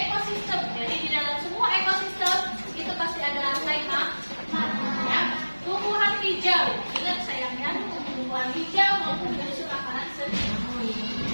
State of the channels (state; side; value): inverted; both; correlation -1.00